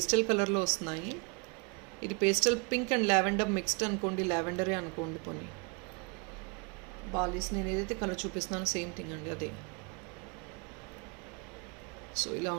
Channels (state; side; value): quieter; left; 32.9 dB